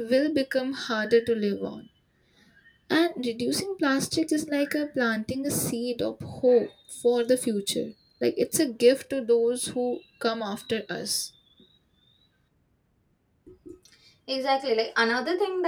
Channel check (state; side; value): identical; both; correlation 1.00